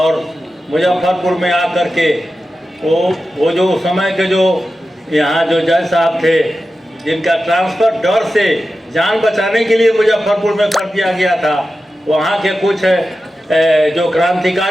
मुजफ्फरपुर में आकर के वो जो उस समय के जो यहाँ जो जज साहब थे, जिनका ट्रांसफ़र डर से जान बचाने के लिए मुजफ्फरपुर में कर दिया गया था, वहाँ के कुछ जो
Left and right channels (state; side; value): normal; both; correlation 0.92